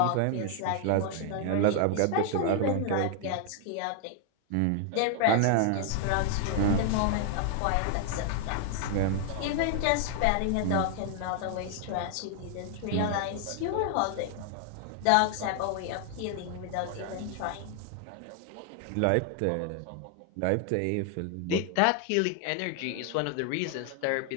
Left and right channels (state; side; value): different; both; correlation 0.00